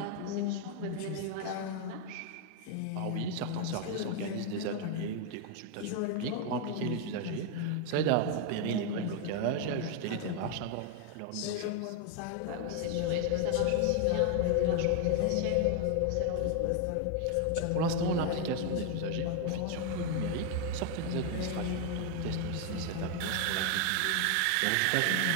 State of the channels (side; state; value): both; different; correlation 0.00